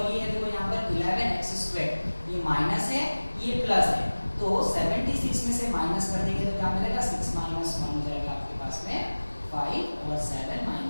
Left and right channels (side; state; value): both; inverted; correlation -1.00